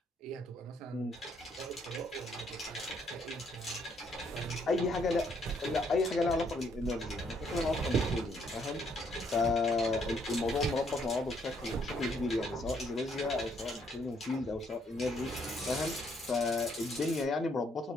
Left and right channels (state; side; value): normal; both; correlation 0.69